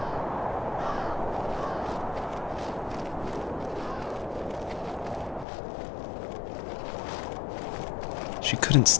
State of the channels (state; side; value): drops out; right; at 5.5 s